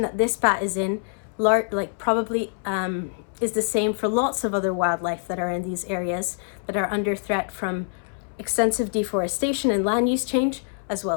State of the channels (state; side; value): silent; right; 62 dB below the other